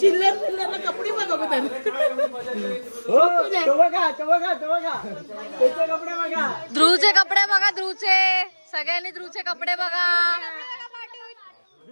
कपडे बघा ध्रुवचे कपडे बघा. ध्रुवचे सगळ्यांनी ध्रुवचे कपडे बघा.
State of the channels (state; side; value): inverted; both; correlation -1.00